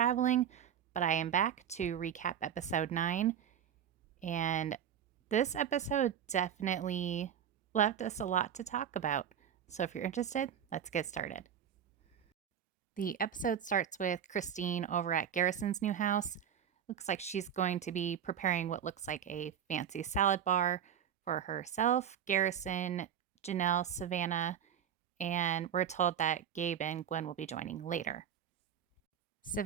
but I am back to recap episode 9. And this episode definitely left us a lot to talk about. So if you're interested, let's get started. The episode starts with Christine over at Garrison's new house. Looks like she's going to be preparing what looks like a fancy salad bar for herself, Garrison, Janelle, Savannah, and we're told that Gabe and Gwen will be joining later.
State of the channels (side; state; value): left; quieter; 9.1 dB